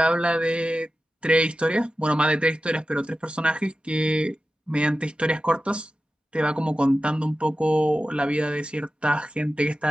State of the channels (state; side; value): normal; both; correlation 0.93